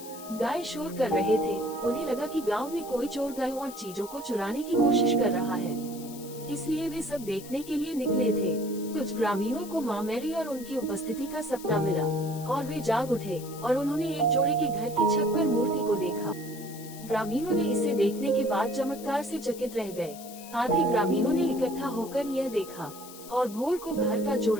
गाय शोर कर रहे थे। उन्हें लगा कि गांव में कोई चोर गायों और चीजों को चुराने की कोशिश कर रहा है, इसलिए वे सब देखने के लिए निकले थे। कुछ ग्रामीणों को माँ मैरी और उनकी उपस्थिति का सपना मिला और वे जाग उठे और उन्होंने एक जोड़े के घर की छत पर मूर्ति को देखा। ग्रामीणों ने इसे देखने के बाद चमत्कार से चकित रह गए। आधे ग्रामीणों ने इकट्ठा होकर यह देखा और भोर को घर का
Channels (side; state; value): left; noise; hiss, 16 dB below the sound